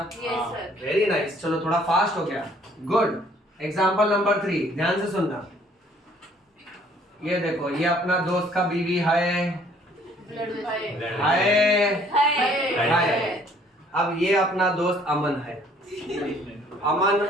Yes sir. Very nice. चलो थोड़ा फास्ट हो गया। गुड। एग्जाम्पल नंबर 3 ध्यान से सुनना। ये देखो ये अपना दोस्त का बीवी है, हाय। अब ये अपना दोस्त अमन है। अमन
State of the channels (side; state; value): both; normal; correlation 0.60